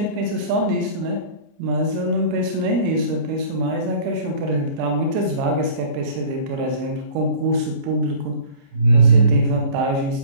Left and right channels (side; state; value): left; late; 29 ms